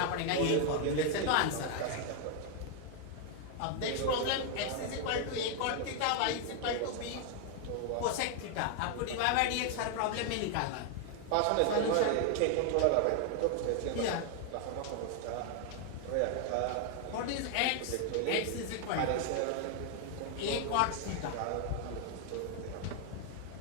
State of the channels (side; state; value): both; different; correlation 0.00